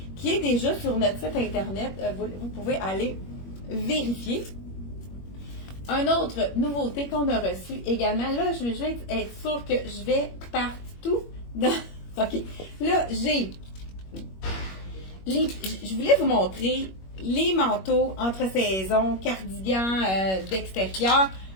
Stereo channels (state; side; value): late; right; 21 ms